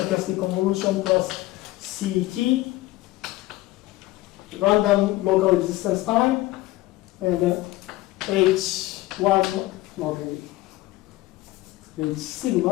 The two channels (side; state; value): right; quieter; 17.9 dB